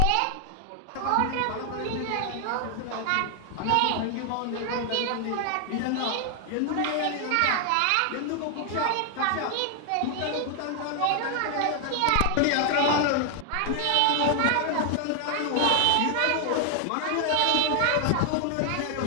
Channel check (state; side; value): different; both; correlation 0.00